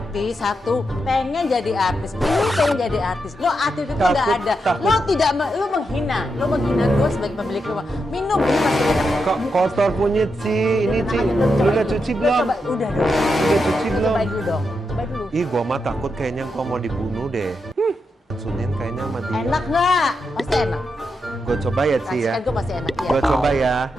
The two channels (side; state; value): both; normal; correlation 0.85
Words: satu pengen jadi artis, ini pengen jadi artis. Lo artis itu nggak ada. Lo menghina gue sebagai pemilik rumah. Minum ini pasti enak. Kok kotor punya Ci, ini Ci. Lu udah cuci belum? Coba, udah dong. Udah cuci Lo belum? cobain dulu dong. Cobain dulu. Ih, gua mah takut kayaknya gua mau dibunuh deh. Sunin kayaknya sama dia. Enak nggak? Pasti enak. Gue coba ya Ci ya. Racikan gue pasti enak ya. Gue coba ya.